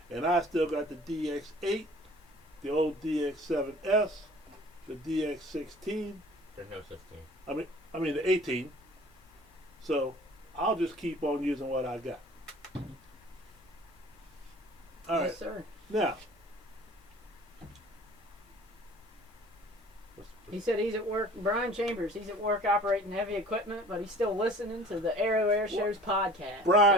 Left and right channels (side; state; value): both; normal; correlation 0.48